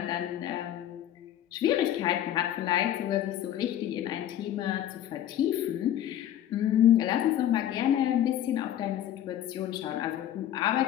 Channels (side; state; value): right; quieter; 11.5 dB